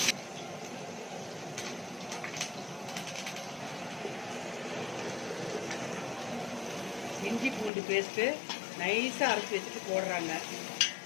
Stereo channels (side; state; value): right; drops out; at 7.7 s